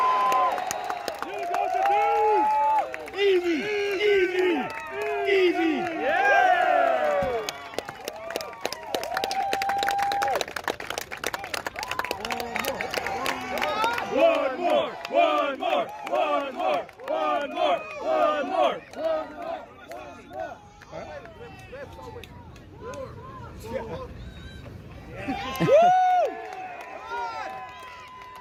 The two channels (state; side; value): identical; both; correlation 1.00